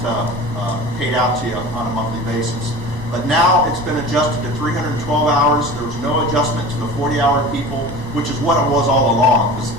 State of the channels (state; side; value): normal; both; correlation 0.37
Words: paid out to you on a monthly basis. But now it's been adjusted to 312 hours. There was no adjustment to the 40-hour people, which is what it was all along.